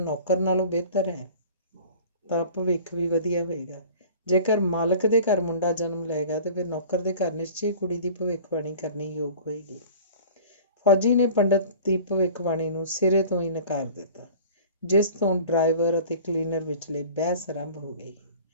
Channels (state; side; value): inverted; both; correlation -0.43